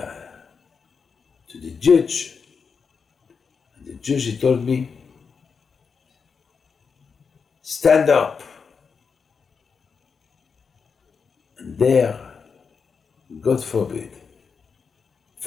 the judge. And the judge, he told me, stand up. And there, God forbid,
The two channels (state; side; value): quieter; right; 5.6 dB